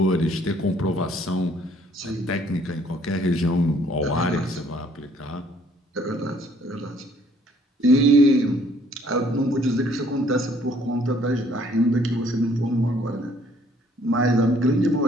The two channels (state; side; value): normal; both; correlation 0.61